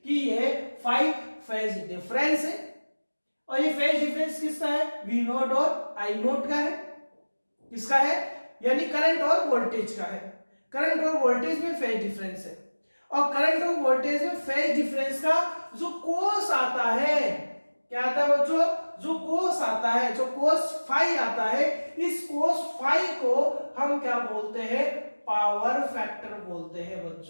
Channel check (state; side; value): inverted; both; correlation -1.00